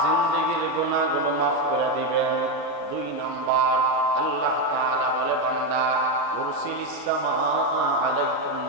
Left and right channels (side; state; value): both; normal; correlation 0.08